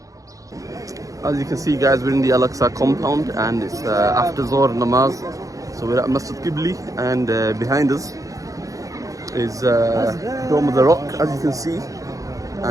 you can see, guys, we're in the Al-Aqsa compound and it's after Zohr namaz. So we're at Masjid Qibli and behind us is Dome of the Rock, as you can see.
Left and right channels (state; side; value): late; left; 0.16 ms